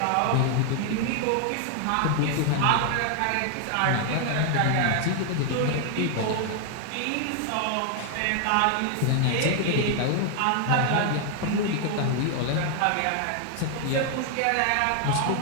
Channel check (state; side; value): different; both; correlation 0.00